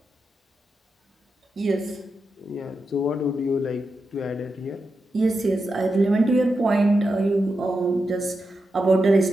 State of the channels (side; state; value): both; normal; correlation 0.88